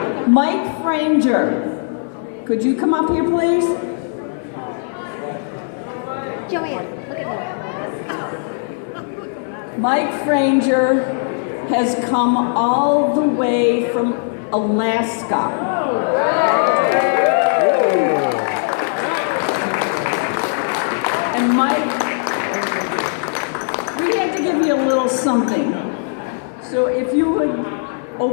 Mike Franger, could you come up here, please? Joanne, look at me. Mike Franger has come all the way from Alaska. And Mike, we had to give you a little something. So if you would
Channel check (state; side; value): silent; right; 57 dB below the other